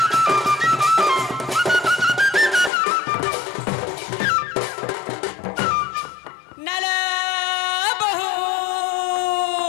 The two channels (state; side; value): drops out; right; at 2.7 s